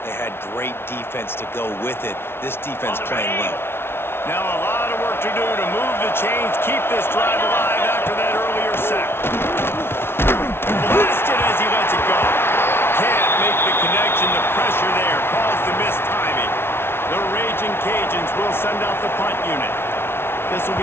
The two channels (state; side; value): late; right; 0.12 ms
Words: they had great defense to go with it. This defense playing well. Now a lot of work to do to move the chains, keep this drive alive after that earlier sack. Blasted as he lets it go. Can't make the connection. The pressure there caused the missed timing. The Raging Cajuns will send out the punt unit. This will be